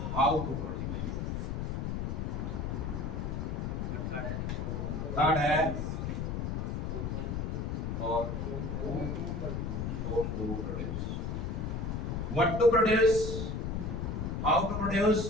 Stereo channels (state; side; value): noise; left; rumble, 2 dB below the sound